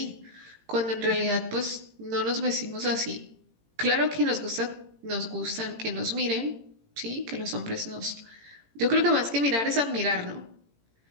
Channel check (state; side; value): late; left; 18 ms